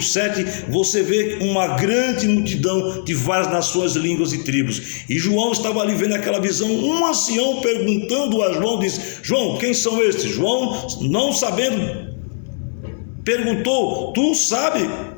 7, você vê uma grande multidão de várias nações, línguas e tribos. E João estava ali vendo aquela visão. Um ancião perguntando a João, disse: João, quem são estes? João, não sabendo, perguntou: tu sabe,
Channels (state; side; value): silent; right; digital silence